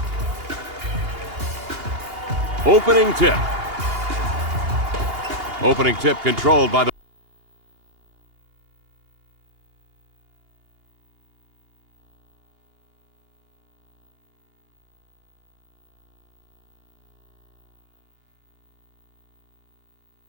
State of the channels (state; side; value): late; left; 2.8 ms